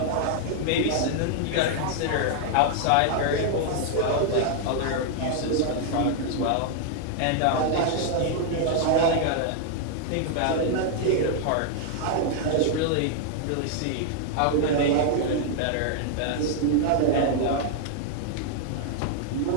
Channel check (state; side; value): different; both; correlation 0.00